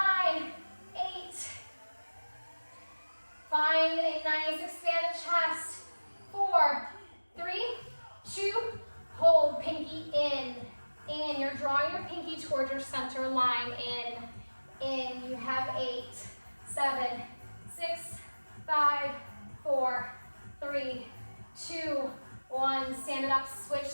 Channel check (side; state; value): both; inverted; correlation -1.00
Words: 8, find a nice expanded chest. 4, 3, 2, hold, pinky in, you're drawing your pinky towards your center line, in, you have 8, 7, 6, 5, 4, 3, 2, 1, stand it up, switch